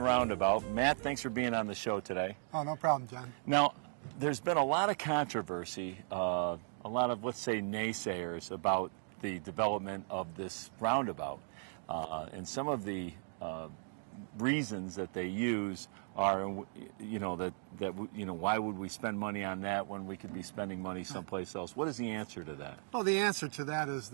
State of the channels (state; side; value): silent; left; 53 dB below the other